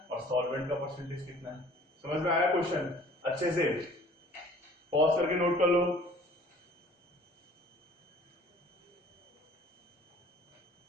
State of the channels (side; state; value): both; normal; correlation 0.51